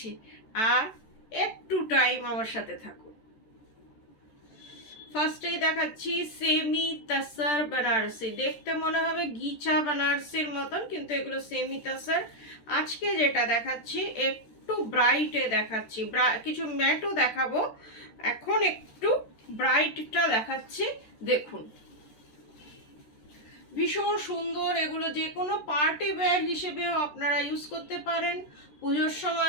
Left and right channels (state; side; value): late; right; 14 ms